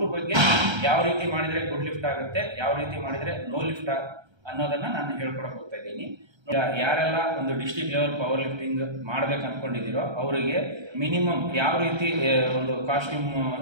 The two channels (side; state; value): left; late; 1.3 ms